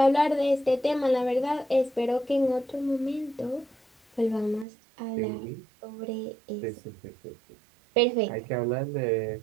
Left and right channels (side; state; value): left; drops out; at 4.7 s